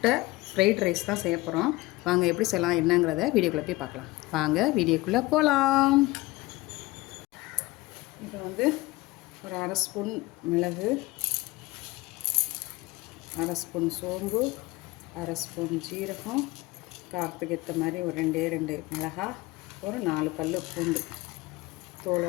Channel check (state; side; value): quieter; right; 20.4 dB